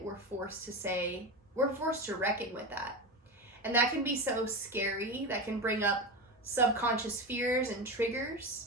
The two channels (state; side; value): normal; both; correlation 0.21